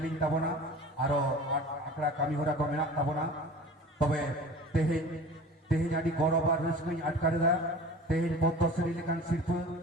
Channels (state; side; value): normal; both; correlation 0.40